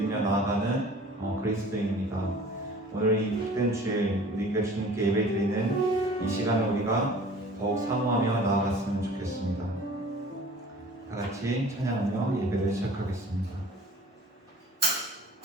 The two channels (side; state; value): both; normal; correlation 0.46